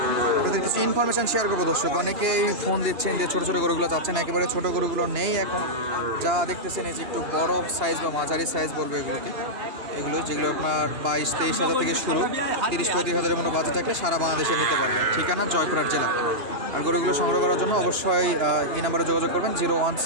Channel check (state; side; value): late; left; 2.8 ms